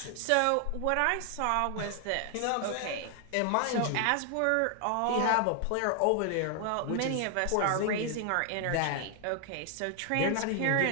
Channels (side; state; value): both; different; correlation 0.00